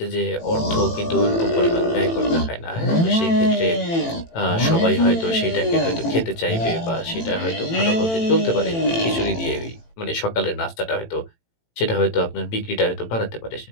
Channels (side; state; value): right; late; 18 ms